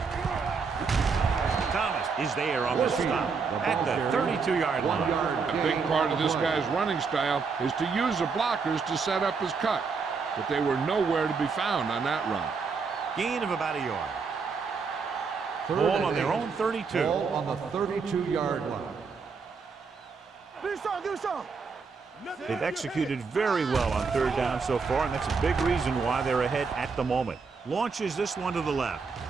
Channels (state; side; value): quieter; left; 5.1 dB